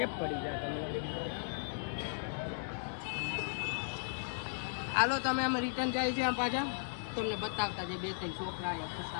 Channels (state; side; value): silent; right; digital silence